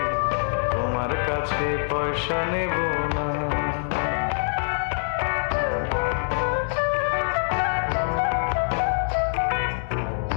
তোমার কাছে পয়সা নেব না।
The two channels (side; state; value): right; silent; digital silence